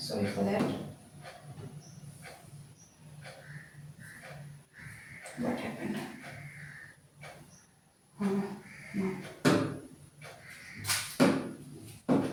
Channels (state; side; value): identical; both; correlation 1.00